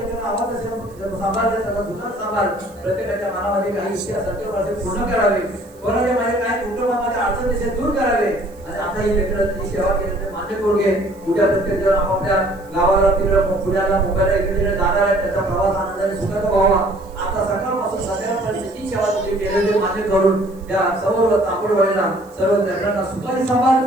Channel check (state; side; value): noise; right; hiss, 29 dB below the sound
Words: आवाज असेल सांभाळले त्याचा जुना सांभाळ प्रत्येकाच्या मनामध्ये काही इच्छा सत्य पूर्ण करावे, कोणाच्या मध्ये काही कुटुंबामध्ये अडचण दिसेल दूर करावे. आणि आता ही लेकरांची सेवा केली मान्य करून घे. उद्या प्रत्येक जण आपापल्या गावाला तिकडे पुण्याला मुंबईला इकडे जाणार आहे, त्याचा प्रवास आनंदाने सुखाचा व्हावा. आता सकाळपासून संध्याकाळपर्यंत जी सेवा तुम्ही केलेली मान्य करून त्या सर्व तांबडवडीला सर्व लेकरांना सुखाने सांभाळ,